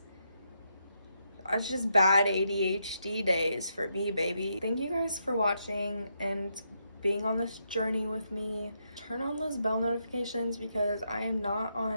It's just bad ADHD days for me, baby. Thank you guys for watching and being on this journey with me. Turn on those bell notifications because I am not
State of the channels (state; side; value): inverted; both; correlation -0.80